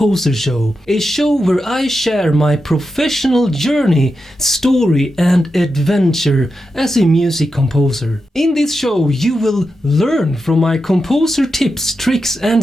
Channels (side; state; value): both; normal; correlation 0.88